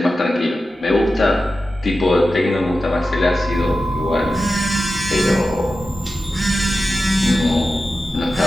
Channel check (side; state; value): both; normal; correlation 0.92